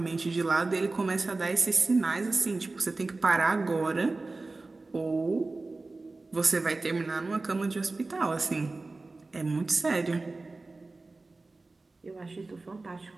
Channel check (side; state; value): left; quieter; 3.4 dB